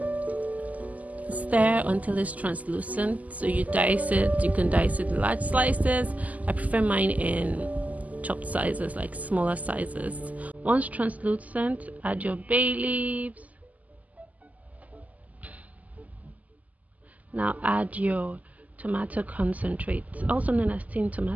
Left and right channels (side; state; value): left; late; 0.076 ms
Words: Stir until it's translucent. So you dice it. You can dice it in large slices. I prefer mine in chopped sizes, like smaller sizes. Once translucent, add your bay leaves. Now add your tomato concentrate, also known as tin